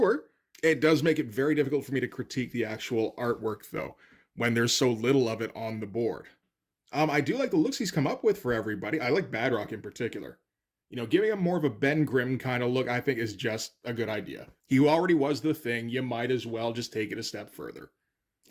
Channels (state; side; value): identical; both; correlation 1.00